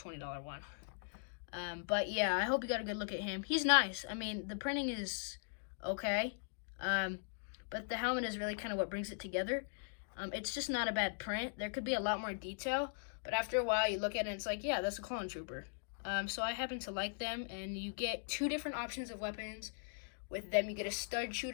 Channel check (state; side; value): silent; right; digital silence